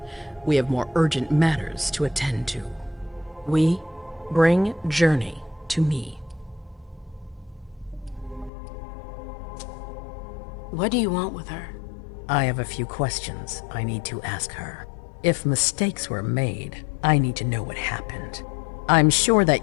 We have more urgent matters to attend to. We bring Journey to me. What do you want with her? I have a few questions I need to ask her. If mistakes were made, I need to know what happened. I'm sure that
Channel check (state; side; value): drops out; right; at 8.5 s